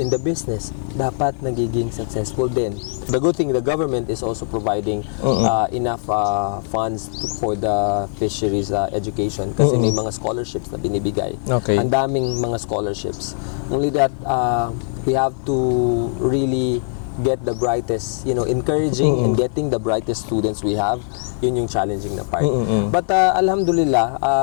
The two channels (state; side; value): silent; right; 59 dB below the other